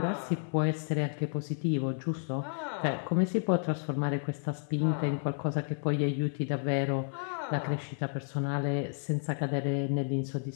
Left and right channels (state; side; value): silent; right; 57 dB below the other